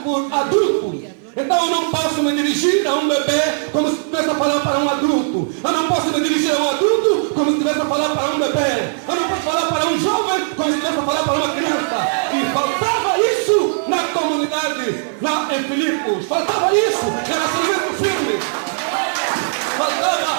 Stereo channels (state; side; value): silent; left; 56 dB below the other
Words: por adultos. Então eu não posso me dirigir a um bebê como se estivesse a falar para um adulto. Eu não posso me dirigir a um adulto como se estivesse a falar para um bebê. Eu não posso falar para um jovem como se estivesse a falar para uma criança. E faltava isso na comunidade, em Filipos. Faltava isso, relacionamento firme.